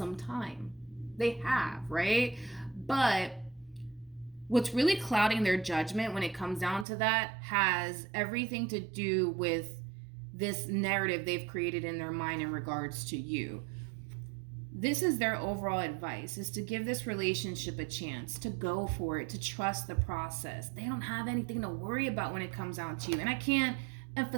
time. They have, right? But what's really clouding their judgment when it comes down to that has everything to do with this narrative they've created in their mind in regards to you. This is their overall advice, is to give this relationship a chance, to go for it, to trust the process. They don't have anything to worry about when it comes down to you. And I can't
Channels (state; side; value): drops out; left; at 6.9 s